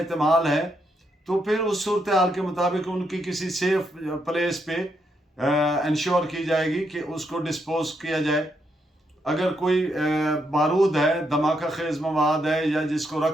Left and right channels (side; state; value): both; normal; correlation 0.79